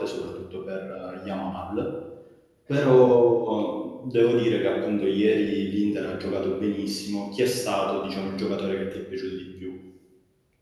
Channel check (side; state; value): both; identical; correlation 1.00